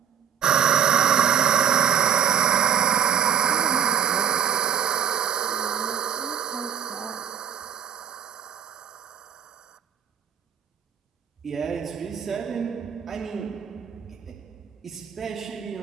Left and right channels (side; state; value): left; quieter; 8.4 dB